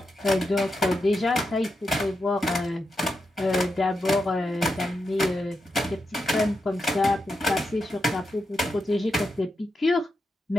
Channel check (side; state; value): both; normal; correlation 0.86